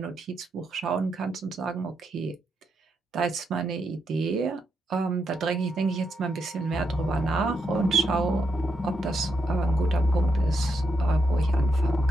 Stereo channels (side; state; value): both; normal; correlation 0.81